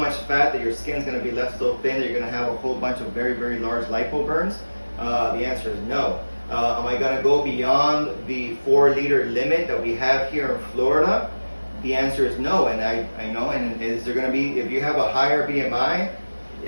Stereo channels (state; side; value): inverted; both; correlation -1.00